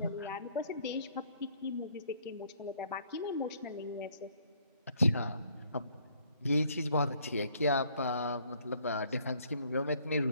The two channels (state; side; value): inverted; both; correlation -0.64